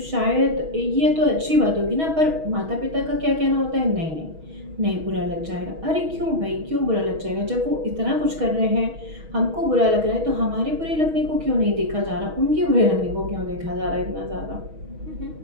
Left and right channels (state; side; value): late; left; 6.3 ms